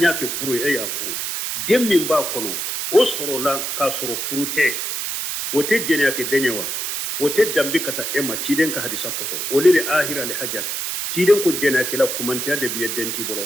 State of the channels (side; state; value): right; noise; hiss, 3 dB below the sound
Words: ke furu ya furu dem min ba kono o soro la ka soro furu te o te jenya ke denyewa o te dambe kata ema ciden ka hadisa koso o le ahira le hajar ciden ko jenya ke la kumantiya de biye denti